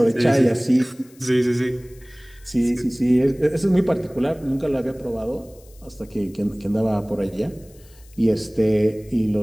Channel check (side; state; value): left; noise; hiss, 27 dB below the sound